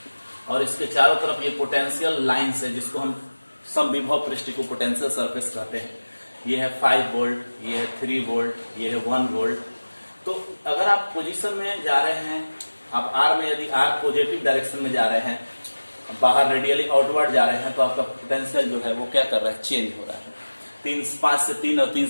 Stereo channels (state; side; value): inverted; both; correlation -1.00